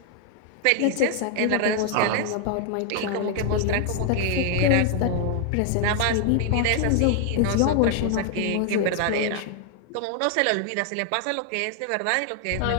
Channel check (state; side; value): different; both; correlation 0.00